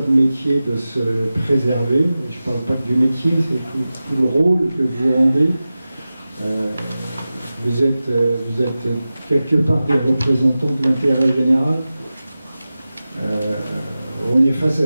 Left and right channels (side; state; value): both; inverted; correlation -0.95